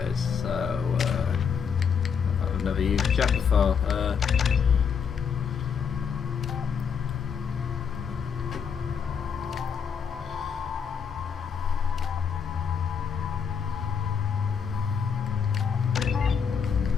is. So, I've never used Jack before.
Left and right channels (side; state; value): right; quieter; 6.7 dB